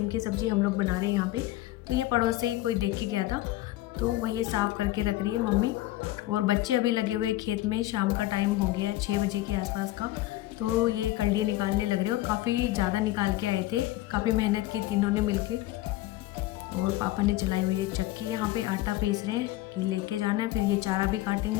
की सब्ज़ी हम लोग बना रहे हैं यहाँ पे। तो ये पड़ोस से ही कोई देख के गया था तो वही साफ़ करके रख रही है मम्मी। और बच्चे अभी लगे हुए खेत में, शाम का टाइम हो गया है 6 बजे के आसपास का। तो ये कल्डी निकालने लग रहे और काफ़ी ज़्यादा निकाल के आए थे, काफ़ी मेहनत की तीनों ने मिलके। और पापा ने चलाई हुई है चक्की, यहाँ पे आटा पीस रहे हैं कि लेके जाना है। फिर ये चारा भी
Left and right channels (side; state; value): right; quieter; 16.5 dB